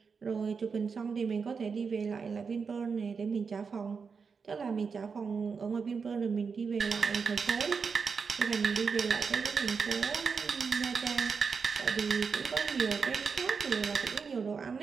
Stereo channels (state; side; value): quieter; left; 5.5 dB